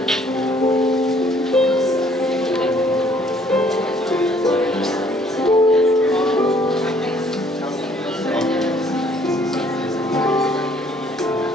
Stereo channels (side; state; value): both; normal; correlation 0.61